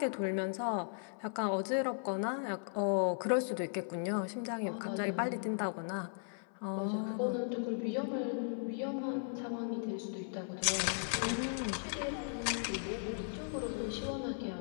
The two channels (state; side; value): silent; right; 53 dB below the other